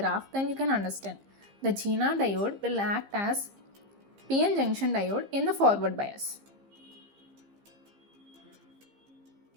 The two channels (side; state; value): left; late; 15 ms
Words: then you can understand. The Zener diode will act as PN junction diode in the forward bias.